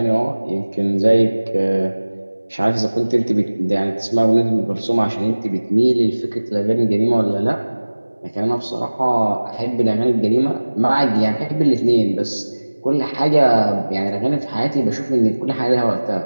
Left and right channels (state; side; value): inverted; both; correlation -1.00